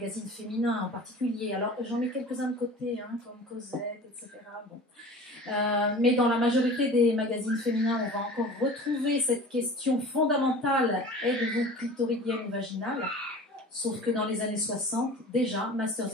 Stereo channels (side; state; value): both; normal; correlation 0.40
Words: féminins en particulier. Alors, j'en mets quelques-uns de côté, comme Cosette, etc. Bon. Mais dans la majorité des magazines féminins, on va encore retrouver cette question fondamentale, êtes-vous clitoridienne ou vaginale? Sauf que dans les années 60, déjà,